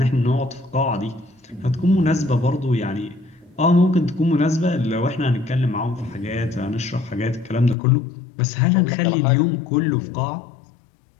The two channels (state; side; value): drops out; right; at 7.8 s